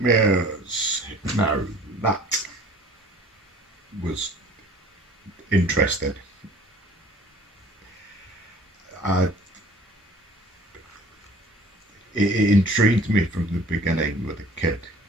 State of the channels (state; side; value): normal; both; correlation 0.50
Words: Now, that was interesting. It intrigued me from the beginning with a kid.